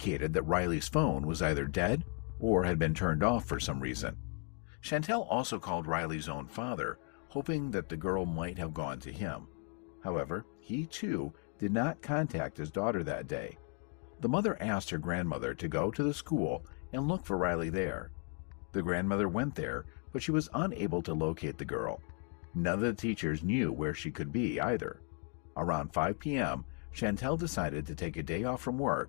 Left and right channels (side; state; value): right; quieter; 38.7 dB